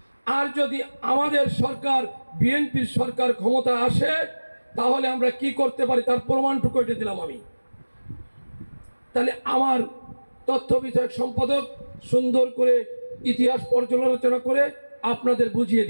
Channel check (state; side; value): inverted; both; correlation -1.00